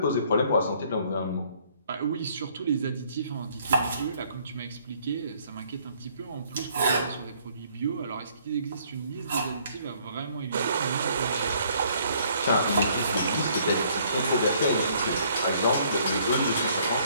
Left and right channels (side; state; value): both; inverted; correlation -0.63